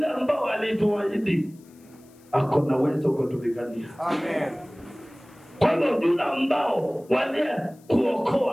ambao alituahidi ako na uwezo kutupigania. Amen. Kwa hivyo yule ambao walie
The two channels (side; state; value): left; noise; hiss, 30 dB below the sound